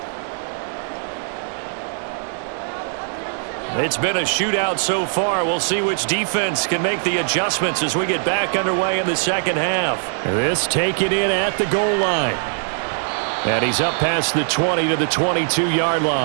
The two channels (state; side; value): silent; left; 63 dB below the other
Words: It's been a shootout so far. We'll see which defense can make the adjustments as we get back underway in the second half. This taken in at the goal line. And he's up past the 20 to the 22-yard